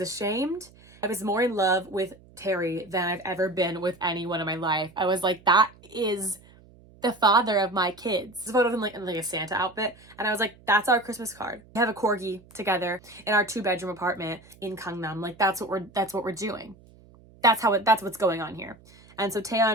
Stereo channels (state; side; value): noise; right; hum, 25 dB below the sound